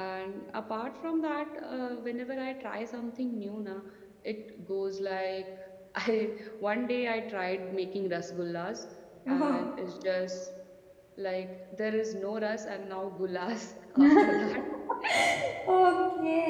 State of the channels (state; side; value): identical; both; correlation 1.00